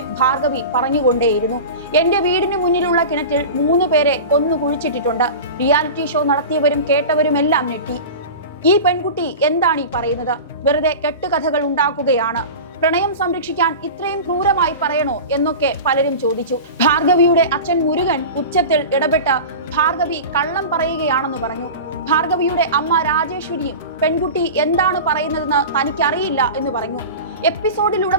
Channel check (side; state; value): both; inverted; correlation -0.31